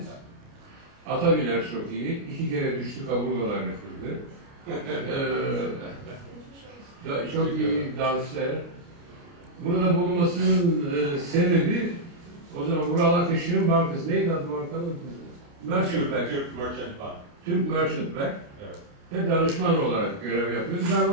Ata biner çok iyi. 2 kere düştü, kaburgalarını kırdı. Çok iyi danslar. Burada bulunmasının sebebi, o zaman Vural Akışık'ın bankası. Neydi adı bankanın? Merchant Bank. Türk Merchant Bank. Evet. Ve danışman olarak görev yapıyordu. Ben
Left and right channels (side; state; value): left; late; 29 ms